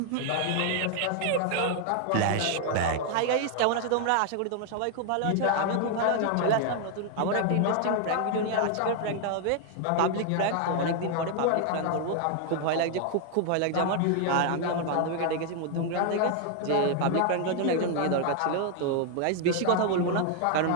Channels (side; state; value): both; different; correlation 0.00